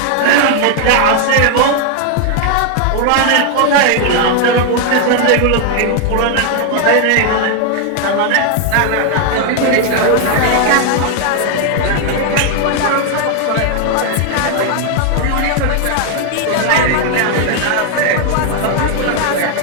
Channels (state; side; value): different; both; correlation 0.00